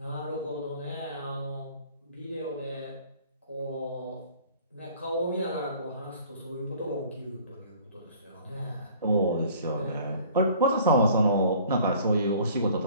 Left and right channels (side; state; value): both; inverted; correlation -0.51